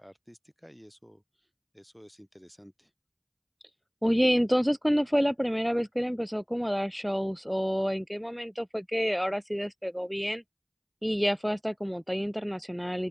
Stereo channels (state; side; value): identical; both; correlation 1.00